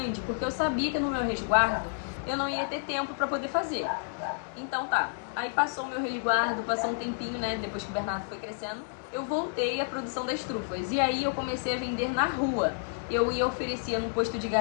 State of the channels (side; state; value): right; silent; 58 dB below the other